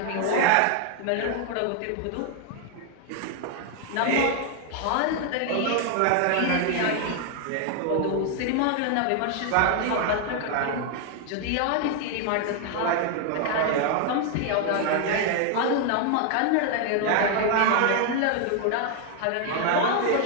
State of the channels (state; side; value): different; both; correlation 0.00